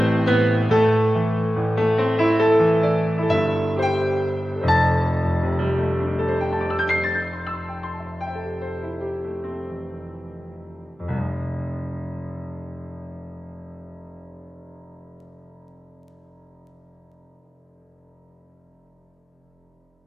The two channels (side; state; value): both; normal; correlation 0.94